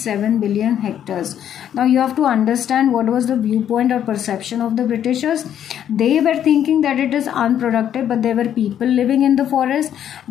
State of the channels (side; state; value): right; quieter; 10.0 dB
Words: billion hectares. Now you have to understand what was the viewpoint or perception of the Britishers. They were thinking that it is unproductive, but there were people living in the forest.